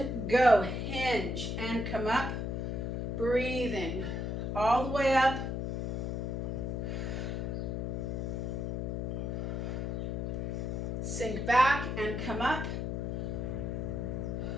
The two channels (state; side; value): noise; left; hum, 1 dB below the sound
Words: go. Hinge and come up. Breathing all the way up. Sink back and come up.